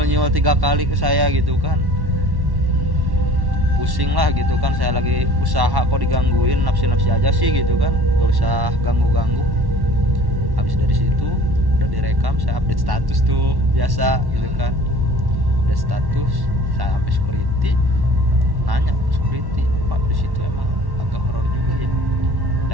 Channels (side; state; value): left; late; 1.1 ms